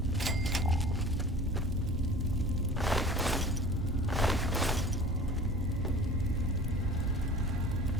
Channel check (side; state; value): both; normal; correlation 0.43